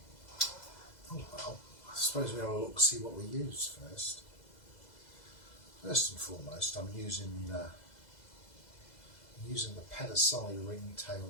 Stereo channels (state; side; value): late; right; 2.0 ms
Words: Oh well, I suppose we'll have a look, see what we use first. First and foremost, I'm using the percussion ringtail